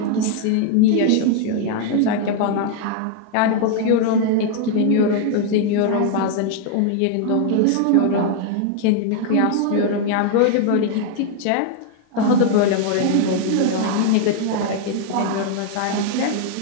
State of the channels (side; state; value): both; different; correlation 0.00